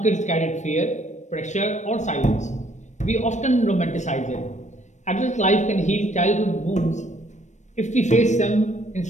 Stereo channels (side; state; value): right; late; 0.34 ms